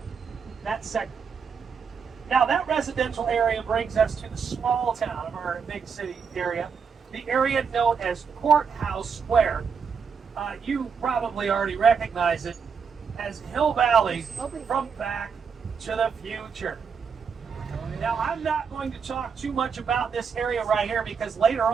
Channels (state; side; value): quieter; left; 6.1 dB